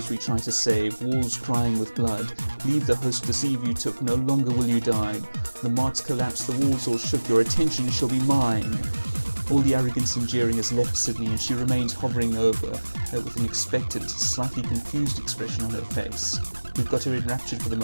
we try to save, walls crying with blood, leave the host deceive you took, no longer will you dine, the marts collapse, the walls all shook, your attention shall be mine. All the arrogance and jeering has left Sydney, and she remains hovering over with an expectant, slightly confused expression on her face. We've got her enraptured for the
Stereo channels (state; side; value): inverted; both; correlation -1.00